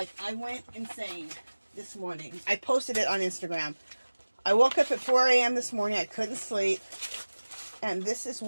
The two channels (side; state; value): both; inverted; correlation -1.00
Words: I went insane this morning. I posted it on Instagram. I woke up at 4 a.m. this morning. I couldn't sleep. And this is